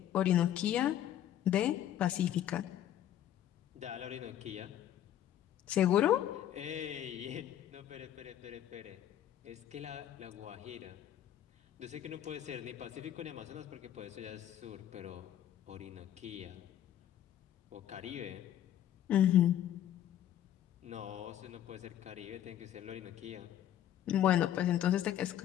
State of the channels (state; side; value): quieter; right; 11.3 dB